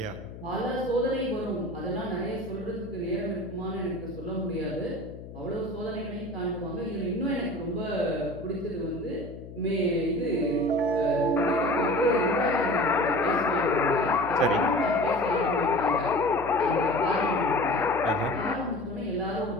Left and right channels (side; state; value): left; noise; hum, 14 dB below the sound